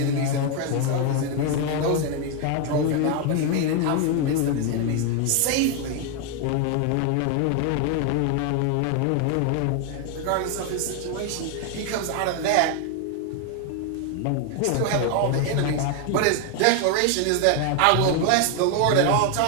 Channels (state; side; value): different; both; correlation 0.01